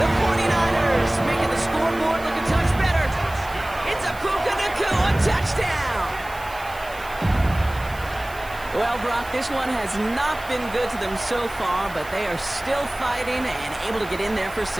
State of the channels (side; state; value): right; noise; hiss, 19 dB below the sound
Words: 49ers making the scoreboard look a touch better. It's a Puka Nacua touchdown. Well, Brock, this one has not been good to them so far, but they are still fighting and able to get in there for 6.